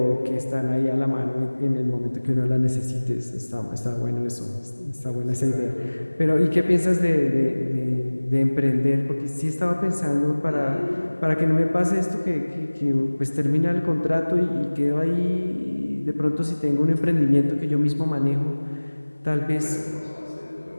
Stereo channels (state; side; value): inverted; both; correlation -1.00